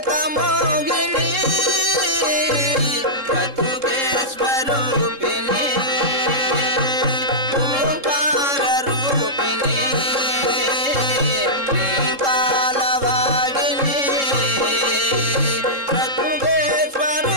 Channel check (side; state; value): left; late; 3.7 ms